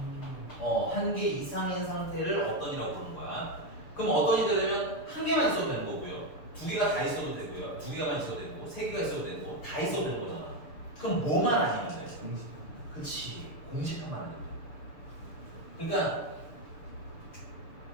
한 개 이상인 상태를 어떤이라고 부르는 거야. 그럼 어떤이 되려면 한 개만 있어도 되는 거고요. 두 개가 다 있어도 되고요. 두 개가만 있어도 되고, 세 개가 있어도 되고, 다 있어도 되는 거잖아. 그럼 뭐만 아니면 돼? 공식. 그치. 공식화만 하는 거야. 그러니까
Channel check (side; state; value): right; late; 6.8 ms